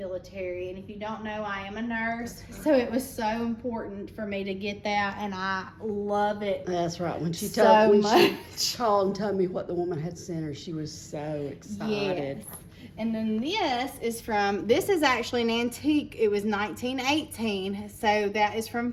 And if you don't know, I am a nurse. So it was so important for me to get that, and I love it. That's right. When she so told much. She called and told me what the woman had sent her, she was so excited. Yes. And then this is actually an antique. It was 1918. So that is from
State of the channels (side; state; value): both; identical; correlation 1.00